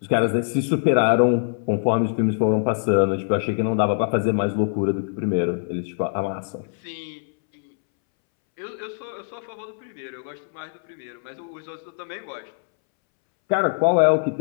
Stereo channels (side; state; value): right; silent; 63 dB below the other